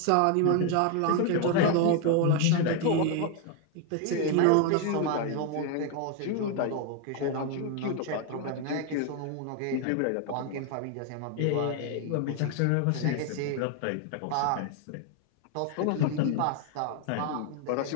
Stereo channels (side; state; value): both; different; correlation 0.01